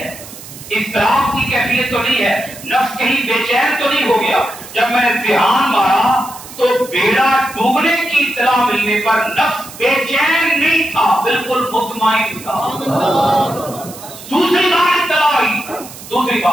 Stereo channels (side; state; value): right; noise; hiss, 16 dB below the sound